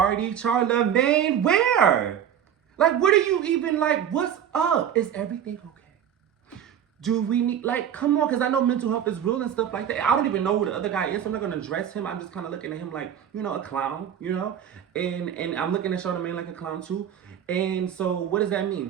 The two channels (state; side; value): quieter; left; 9.3 dB